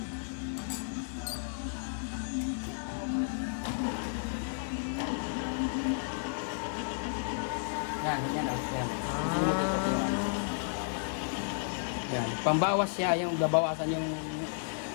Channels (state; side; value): silent; right; digital silence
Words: Yan. Yan. Pambawas siya, yung babawasan yung